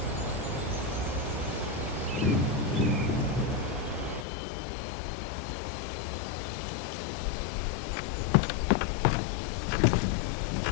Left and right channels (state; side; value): drops out; right; at 4.2 s